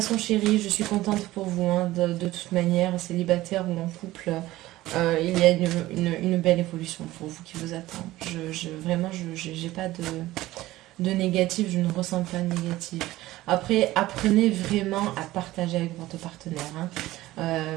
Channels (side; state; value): left; quieter; 16.8 dB